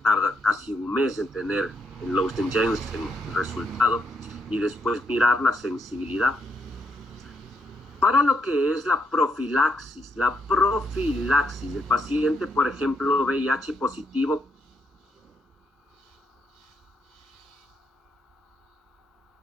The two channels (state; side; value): normal; both; correlation 0.78